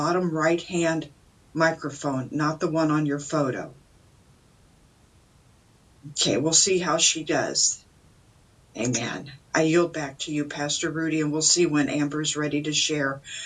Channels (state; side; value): identical; both; correlation 1.00